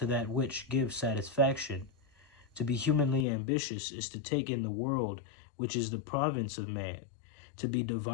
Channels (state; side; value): drops out; right; at 3.2 s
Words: that which gives satisfaction. To be humanly ambitious is to take in the world which is the province of man. To be